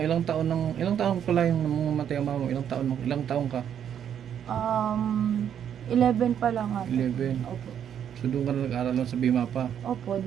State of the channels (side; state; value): left; quieter; 9.1 dB